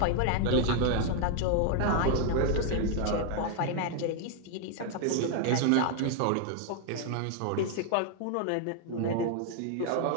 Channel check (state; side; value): different; both; correlation 0.00